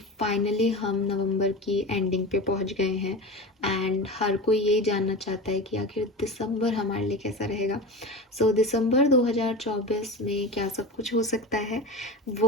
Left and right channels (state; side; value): normal; both; correlation 0.29